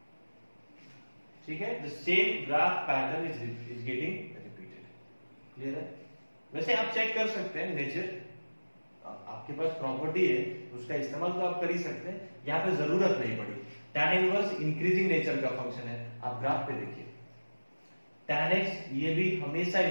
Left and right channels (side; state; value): both; inverted; correlation -1.00